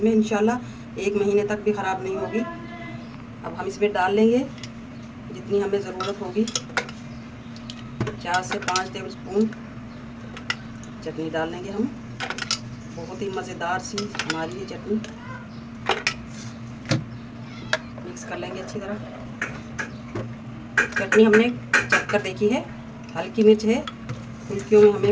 में, इंशाल्लाह 1 महीने तक भी ख़राब नहीं होगी। अब हम इसमें डाल लेंगे जितनी हमें ज़रूरत होगी, 4 से 5 टेबल स्पून चटनी डाल लेंगे हम। बहुत ही मज़ेदार सी हमारी ये चटनी। मिक्स कर लेंगे अच्छी तरह। चटनी हमने चख कर देखी है, हल्की मिर्च है। फुल्कियों में हमें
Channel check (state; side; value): identical; both; correlation 1.00